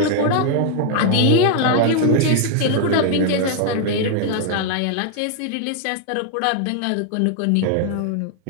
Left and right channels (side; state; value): both; different; correlation 0.00